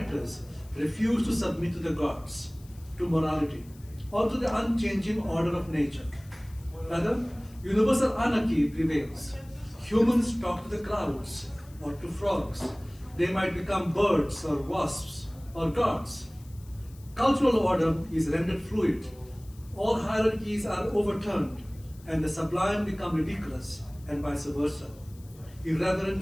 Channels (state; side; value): noise; left; hiss, 26 dB below the sound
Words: refuse to submit to the gods, to morality, or to the unchanging order of nature. Rather, universal anarchy prevails. Humans talk to the clouds or to frogs. They might become birds or wasps or gods. Cultural order is rendered fluid. All hierarchies are overturned, and the sublime become ridiculous, and vice versa.